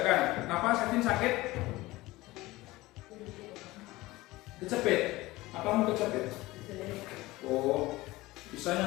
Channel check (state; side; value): quieter; right; 19.4 dB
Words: Kenapa sakit? Kecepet. Apa mau kecepet? Oh,